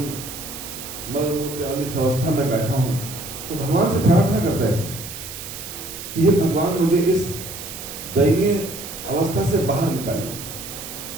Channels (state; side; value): noise; right; hiss, 10 dB below the sound